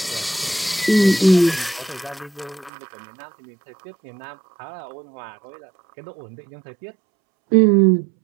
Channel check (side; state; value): left; drops out; at 2.7 s